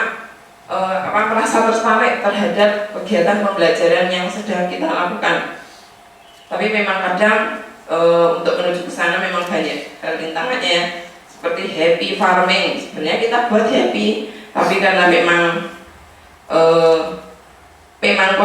merasa tertarik terhadap kegiatan pembelajaran yang sedang kita lakukan. Tapi memang kadang untuk menuju ke sana memang banyak rintangannya ya. Seperti happy farming, sebenarnya kita buat happy, tapi karena memang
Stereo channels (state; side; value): identical; both; correlation 1.00